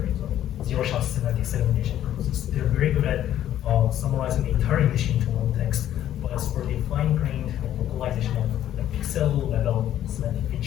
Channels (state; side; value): quieter; right; 11.7 dB